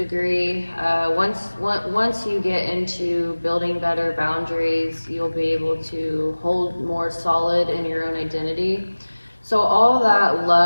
Once you get into building better boundaries, you'll be able to hold more solid in your own identity. So all that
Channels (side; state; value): both; inverted; correlation -1.00